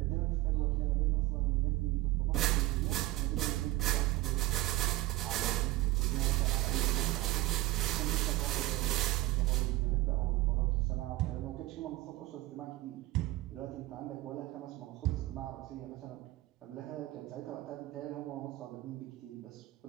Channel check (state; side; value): quieter; left; 18.2 dB